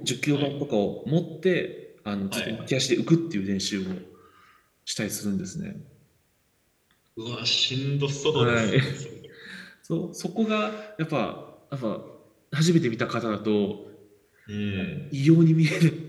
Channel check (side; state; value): both; identical; correlation 1.00